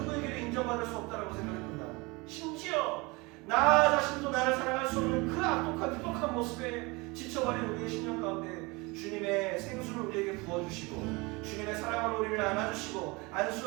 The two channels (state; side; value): quieter; left; 25.5 dB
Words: 인정받을 수 없다고 생각했습니다. 심지어 나 자신도 나를 사랑할 수 없는 그 악독한 모습에 지쳐버린 우리의 심령 가운데 주님의 생수를 우리에게 부어주시고 주님의 사랑으로 우리를 안아주시고